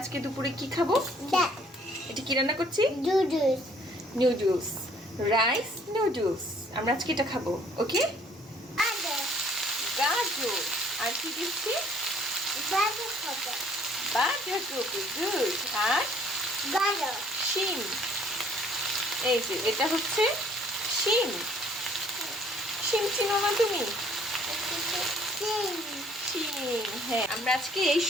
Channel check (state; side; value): normal; both; correlation 0.60